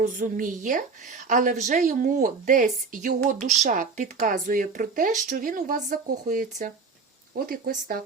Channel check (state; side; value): quieter; left; 4.7 dB